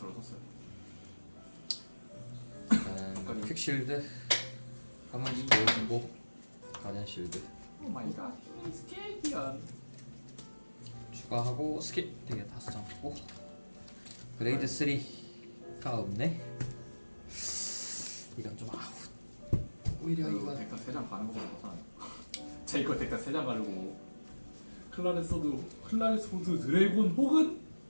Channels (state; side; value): inverted; both; correlation -1.00